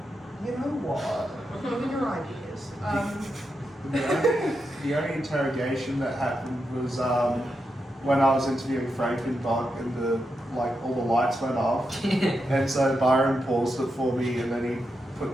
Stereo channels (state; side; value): normal; both; correlation 0.86